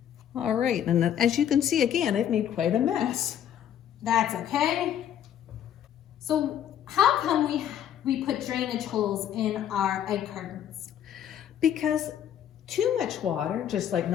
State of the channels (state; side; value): quieter; right; 10.0 dB